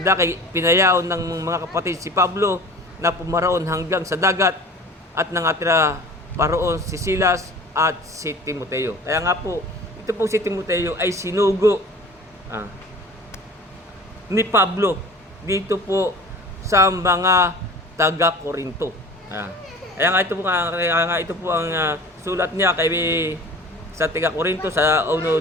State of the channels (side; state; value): both; normal; correlation 0.42